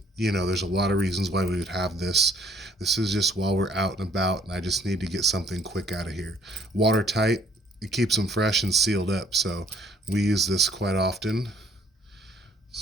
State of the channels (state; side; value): normal; both; correlation 0.60